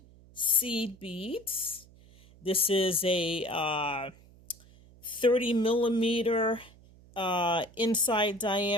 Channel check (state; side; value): noise; right; hum, 25 dB below the sound